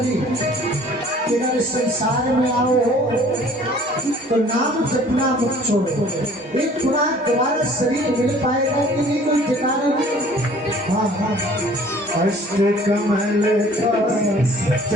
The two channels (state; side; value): normal; both; correlation 0.52